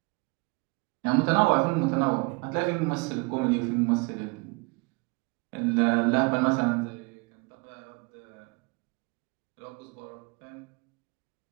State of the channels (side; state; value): left; quieter; 29.4 dB